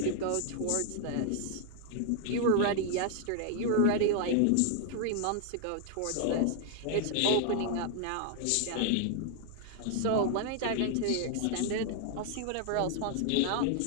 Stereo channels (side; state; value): both; different; correlation 0.00